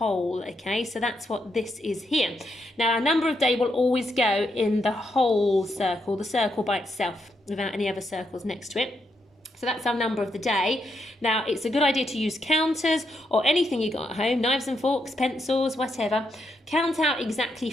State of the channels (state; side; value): normal; both; correlation 0.80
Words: Okay, so that's what this is here. Now our number of day will always go in the whole circle, the circle by itself, without any other circles next to it. So that's our number of the day. Now, it's a good idea to use counters or anything you got at home, knives and forks, pencils, whatever. Count out exactly